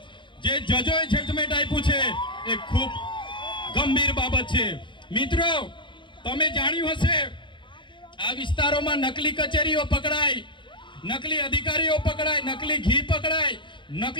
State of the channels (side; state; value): right; late; 0.23 ms